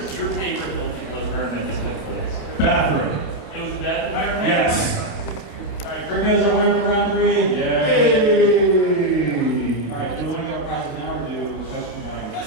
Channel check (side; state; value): right; late; 29 ms